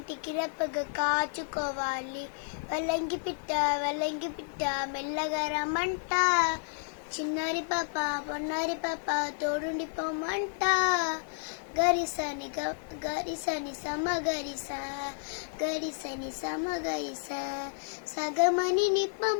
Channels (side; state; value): right; silent; digital silence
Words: రెప్పగా కాచుకోవాలి. వల్లంకి పిట్ట మెల్లగా రమ్మంట, చిన్నారి పాప పొన్నారి పాప తోడుండి పొమ్మంట. గరిసని సమగరిస గరిసని సమగరిస సగమని